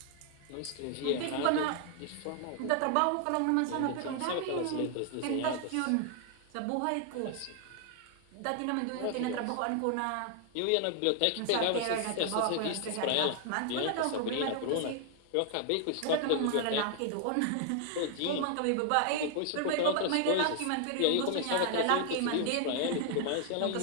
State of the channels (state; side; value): different; both; correlation 0.00